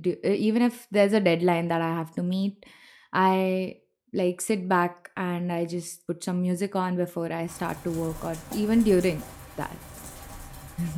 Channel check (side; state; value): both; identical; correlation 1.00